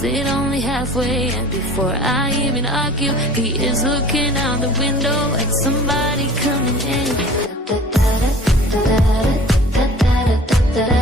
it only halfway. And before I even argue, he is looking out the window at somebody coming in.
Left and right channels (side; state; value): both; normal; correlation 0.45